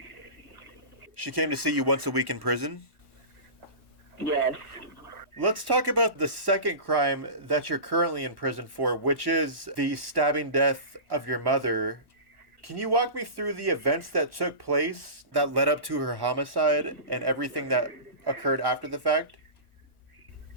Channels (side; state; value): left; late; 1.1 ms